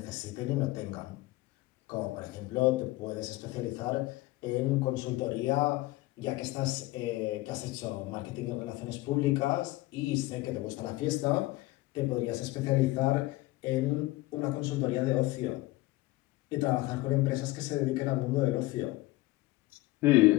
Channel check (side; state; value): right; quieter; 19.1 dB